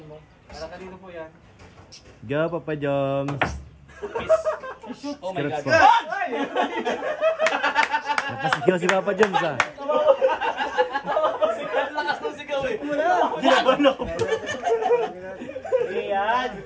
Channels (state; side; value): identical; both; correlation 1.00